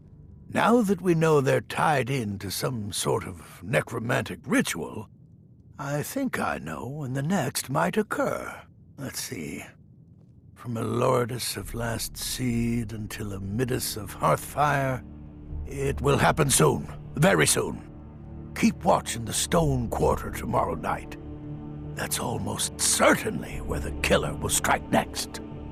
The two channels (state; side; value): identical; both; correlation 1.00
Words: Now that we know they're tied in to some sort of necromantic ritual, I think I know when the next might occur. Let's see. From a Lourdes of Last Seed until a Midas of Hearthfire, it will happen soon. Very soon. Keep watch in the Stone Quarter tomorrow night. That's almost certainly where the killer will strike next.